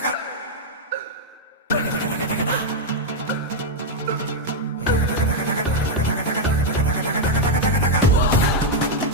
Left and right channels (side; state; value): both; normal; correlation 0.00